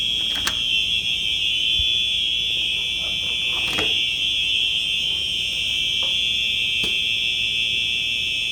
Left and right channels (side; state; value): both; identical; correlation 1.00